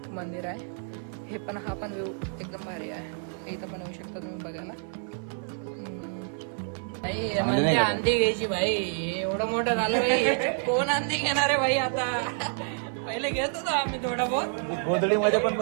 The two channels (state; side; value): silent; left; 58 dB below the other